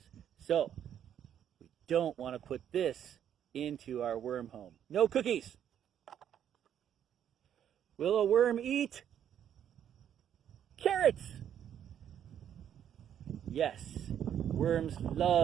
So we don't want to put this into our worm home. No cookies. Will a worm eat carrots? Yes, worms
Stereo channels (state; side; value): quieter; left; 9.6 dB